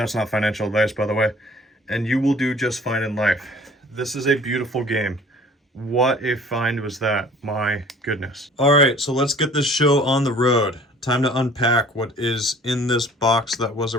not financial advice, by the way, and you will do just fine in life. This is a beautiful game. What a find was that, my goodness. All right, so let's get this show on the road. Time to unpack what is in this box that was a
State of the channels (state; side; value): normal; both; correlation 0.51